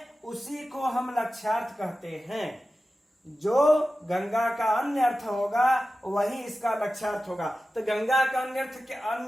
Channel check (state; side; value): normal; both; correlation 0.94